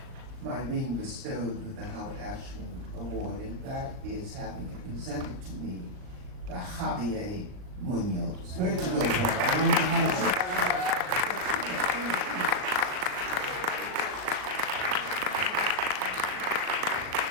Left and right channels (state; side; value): late; left; 38 ms